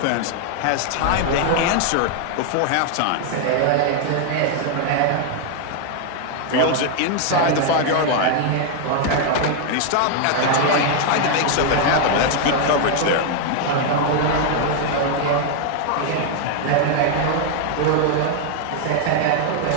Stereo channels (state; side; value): different; both; correlation 0.00